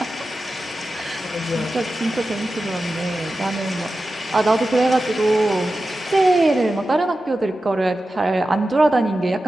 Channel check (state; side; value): normal; both; correlation 0.93